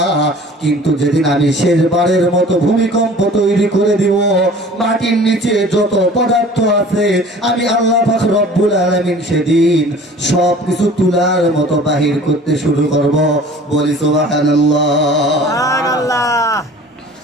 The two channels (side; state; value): both; normal; correlation 0.46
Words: কিন্তু যেদিন আমি শেষবারের মতো ভূমিকম্প তৈরি করে দিব, মাটির নিচে যত পদার্থ আছে আমি আল্লাহ পাক রব্বুল আলামিন সেদিন সব কিছু তুলার মতো বাহির করতে শুরু করব। বলি সুবহানাল্লাহ। সুবহানাল্লাহ।